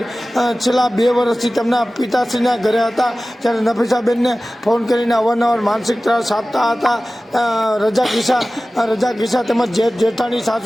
છેલ્લા 2 વર્ષથી તેમના પિતાશ્રીના ઘરે હતા. ત્યારે નફીસાબેનને ફોન કરીને અવારનવાર માનસિક ત્રાસ આપતા હતા. રજાક ઈશા તેમજ જેઠાણી,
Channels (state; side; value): normal; both; correlation 0.97